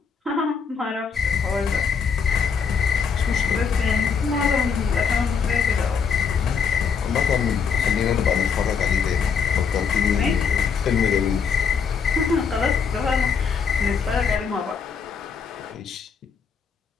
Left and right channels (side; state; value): right; quieter; 6.2 dB